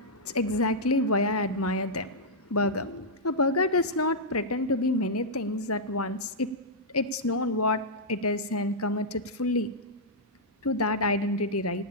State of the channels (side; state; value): both; normal; correlation -0.08